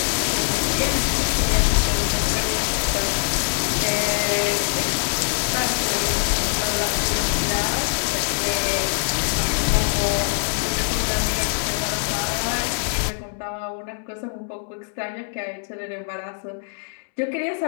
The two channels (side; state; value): right; silent; 63 dB below the other